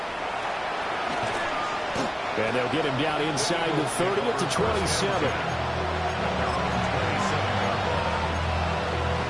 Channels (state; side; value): identical; both; correlation 1.00